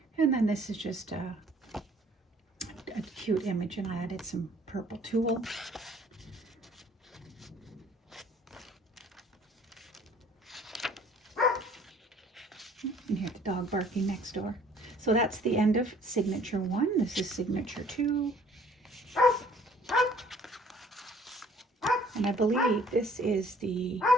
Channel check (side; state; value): both; normal; correlation 0.56